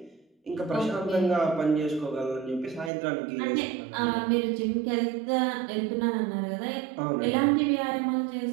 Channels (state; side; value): drops out; left; at 2.9 s